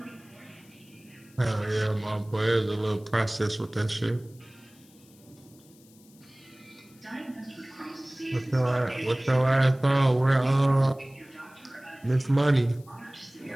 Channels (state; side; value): noise; left; hiss, 28 dB below the sound